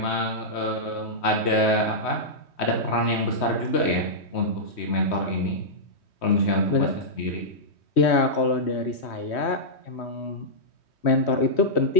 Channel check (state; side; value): late; right; 3.1 ms